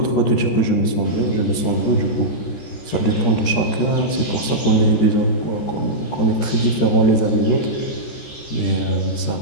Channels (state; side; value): late; right; 14 ms